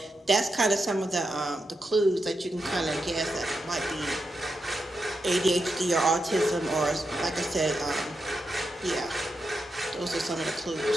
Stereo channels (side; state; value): both; normal; correlation 0.86